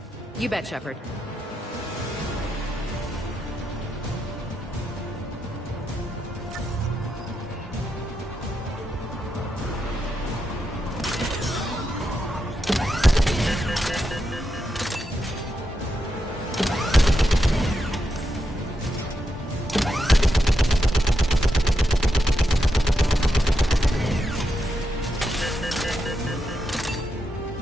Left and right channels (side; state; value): both; normal; correlation 0.85